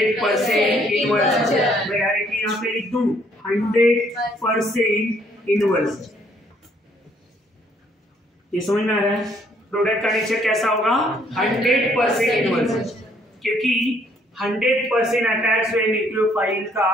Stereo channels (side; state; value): both; normal; correlation 0.65